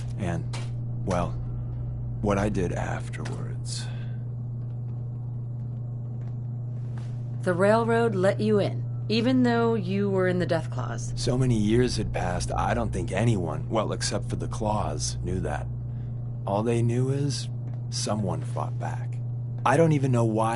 And, well, what I did afterwards. The railroad let you in, even though you were in the Deathclaws. So many years had passed, I don't think anyone, well, except for the Claws, knew that. All they knew is someone fought back. I don't even know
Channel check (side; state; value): both; identical; correlation 1.00